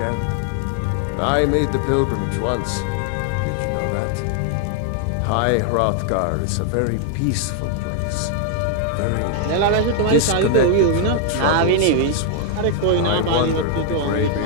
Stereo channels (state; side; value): different; both; correlation 0.00